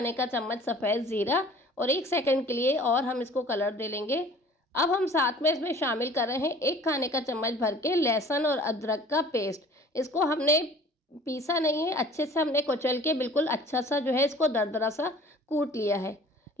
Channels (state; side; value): normal; both; correlation 0.49